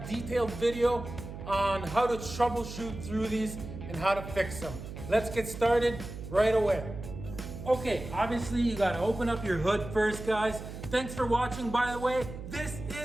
detailed video on how to troubleshoot through these and how to fix them. Let's get started right away. Okay, obviously you gotta open up your hood first, guys. Thanks for watching, by the way. This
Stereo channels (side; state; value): right; noise; hum, 10 dB below the sound